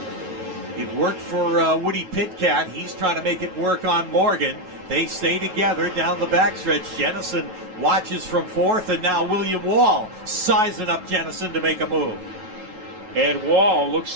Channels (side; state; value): left; late; 9.2 ms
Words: It worked for Woody Pitcat. He's trying to make it work on Morgan. They stay together down the backstretch. Jennison watches from 4th, and now William Wall sizing up Jennison to make a move. And Wall